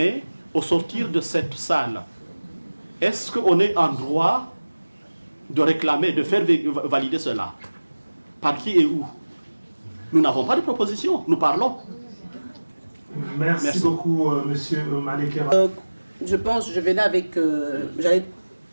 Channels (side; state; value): both; inverted; correlation -1.00